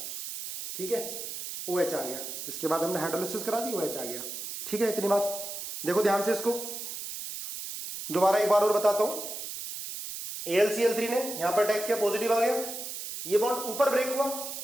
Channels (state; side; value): noise; right; hiss, 7 dB below the sound